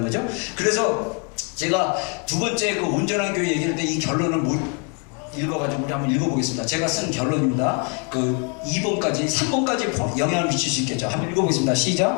거죠. 그래서 제가 두 번째 그 온전한 교회 얘기할 때 이 결론을 읽어가지고 우리 한번 읽어보겠습니다. 제가 쓴 결론입니다. 그 2번까지 3번까지 영향을 미칠 수 있겠죠. 한번 읽어보겠습니다.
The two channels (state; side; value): quieter; right; 38.1 dB